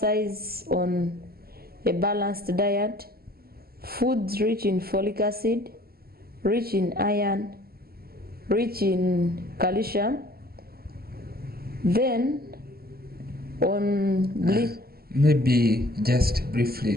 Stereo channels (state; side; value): late; left; 0.44 ms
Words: on a balanced diet, foods rich in folic acid, rich in iron, rich in calcium. Then on maybe just briefly